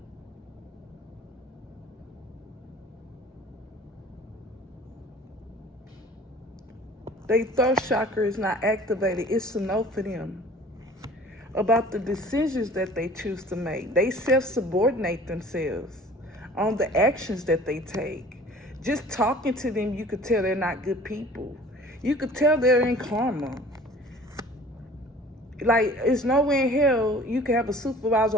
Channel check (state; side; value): normal; both; correlation 0.47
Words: their third chakra is not activated. It's a no for them. About the decisions that they choose to make. They self-subordinate themselves on the actions that they take. Just talking to them, you could tell they're not good people. You could tell they're in karma. Like, it's nowhere in hell you can have a